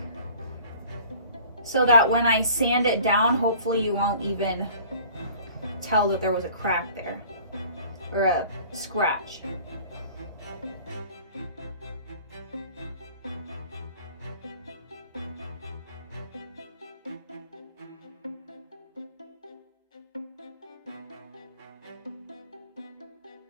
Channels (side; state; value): both; inverted; correlation -0.49